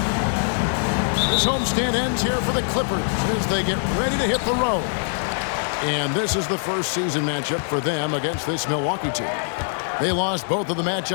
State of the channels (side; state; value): right; silent; digital silence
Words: This homestand ends here for the Clippers as they get ready to hit the road. And this is the first season matchup for them against this Milwaukee team. They lost both of the